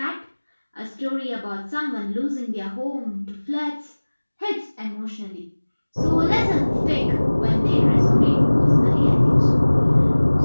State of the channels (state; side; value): inverted; both; correlation -1.00